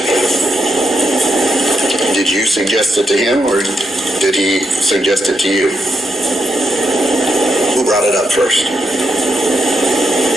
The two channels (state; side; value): normal; both; correlation 0.82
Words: Did you suggest it to him, or did he suggest it to you? Who brought it up first?